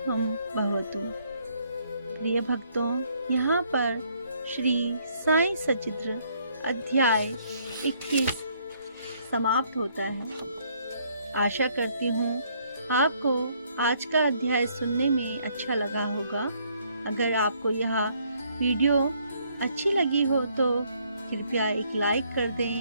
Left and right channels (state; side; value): inverted; both; correlation -0.67